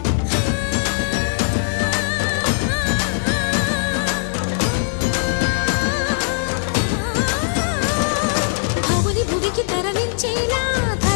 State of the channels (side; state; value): right; silent; 66 dB below the other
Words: భవుని భువికి తరలించేలా